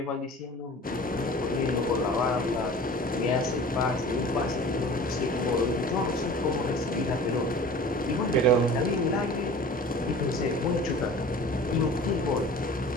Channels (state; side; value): normal; both; correlation 0.42